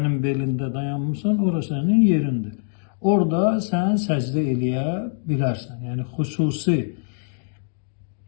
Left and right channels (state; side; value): silent; right; digital silence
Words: belində dayanmısan, ora sənin yerindir. Orada sən səcdə eləyə bilərsən. Yəni, xüsusi